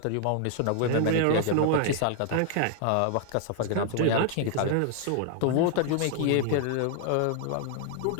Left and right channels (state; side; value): different; both; correlation 0.00